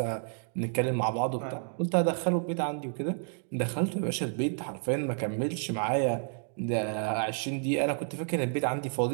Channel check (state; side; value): silent; left; 56 dB below the other